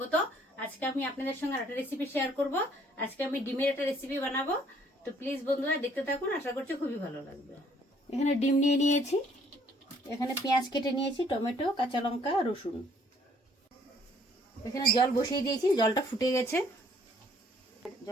আজকে আমি আপনাদের সঙ্গে একটা রেসিপি শেয়ার করব। আজকে আমি ডিমের একটা রেসিপি বানাবো, তো প্লিজ বন্ধুরা দেখতে থাকুন, আশা করছি খুবই ভালো লাগবে। এখানে ডিম নিয়ে নিয়েছি, এখানে পেঁয়াজ কেটে নিয়েছি, টমেটো, কাঁচা লঙ্কা, রসুন। এখানে জল বসিয়ে দিয়েছি, জলটা ফুটে গেছে,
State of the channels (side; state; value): both; normal; correlation 0.62